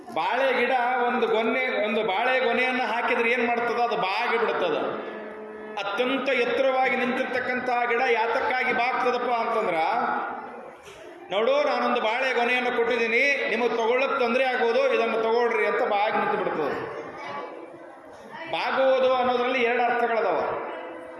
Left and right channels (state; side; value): identical; both; correlation 1.00